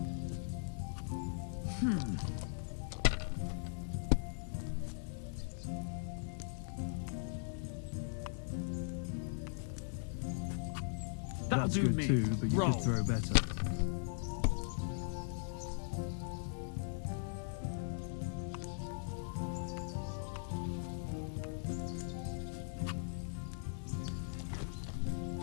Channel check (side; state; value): right; silent; 51 dB below the other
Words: That'll do me. Too, but you Roll. just throw better.